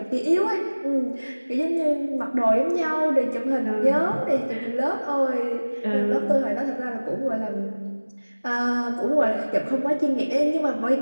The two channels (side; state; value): both; inverted; correlation -1.00